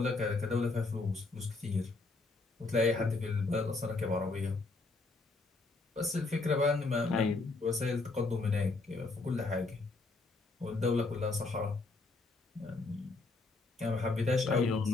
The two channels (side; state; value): right; quieter; 3.5 dB